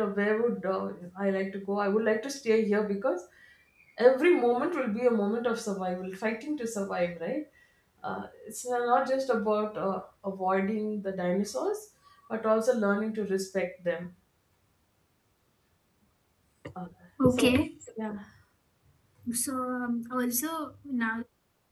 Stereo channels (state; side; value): identical; both; correlation 1.00